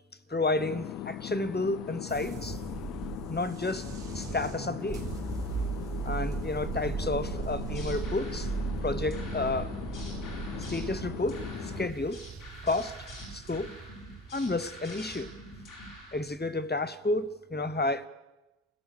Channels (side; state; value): both; normal; correlation 0.36